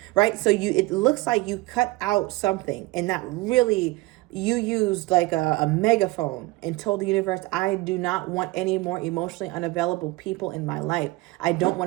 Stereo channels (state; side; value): quieter; left; 20.9 dB